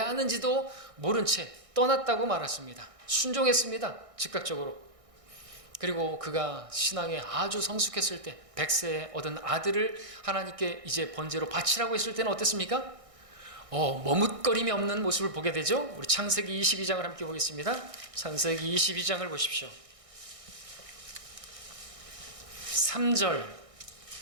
하는지도 모른 채 떠났다고 말했습니다. 순종했습니다. 즉각적으로. 그리고 그가 신앙에 아주 성숙했을 때 100세에 얻은 아들을 하나님께 이제 번제로 바치라고 했을 때는 어땠습니까? 머뭇거림이 없는 모습을 보게 되죠. 우리 창세기 22장을 함께 보겠습니다. 창세기 22장을 보십시오. 3절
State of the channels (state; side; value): late; left; 1.6 ms